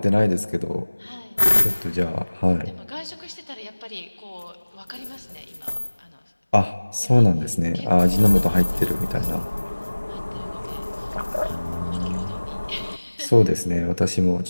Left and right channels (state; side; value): inverted; both; correlation -1.00